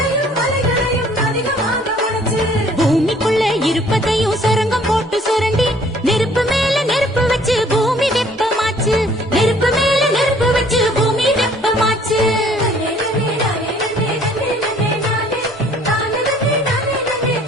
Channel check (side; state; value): both; normal; correlation 0.57